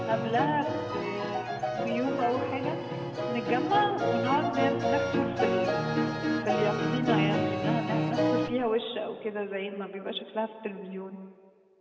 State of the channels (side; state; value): both; identical; correlation 1.00